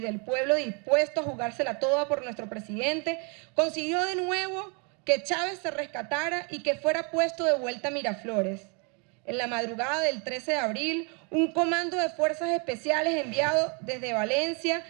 pueblo dispuesto a jugársela toda por nuestro presidente consiguió de nuevo que Chávez se rescatara y que fuera puesto de vuelta a Miraflores. En la madrugada del 13 de abril, un comando de fuerzas especiales enviado desde Valencia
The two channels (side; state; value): left; quieter; 34.5 dB